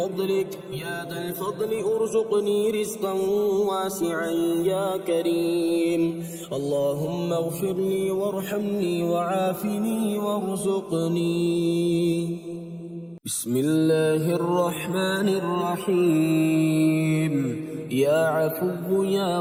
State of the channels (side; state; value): both; identical; correlation 1.00